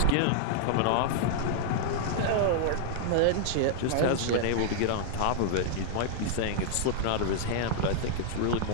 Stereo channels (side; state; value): both; different; correlation -0.01